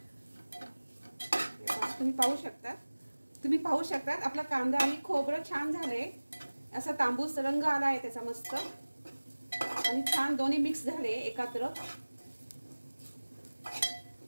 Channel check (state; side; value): inverted; both; correlation -1.00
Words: तुम्ही पाहू शकता आपला कांदा आणि खोबरं छान झाले। असा तांबूस रंग आला आहे त्याचा मस्त, आणि छान दोन्ही मिक्स झाले एकत्र।